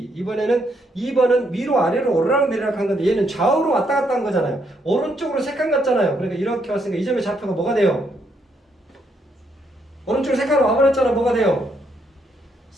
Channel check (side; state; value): both; normal; correlation 0.74